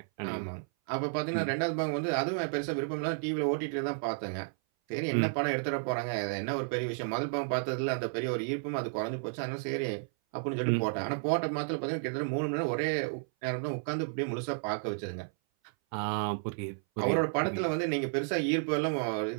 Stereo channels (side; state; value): left; silent; 56 dB below the other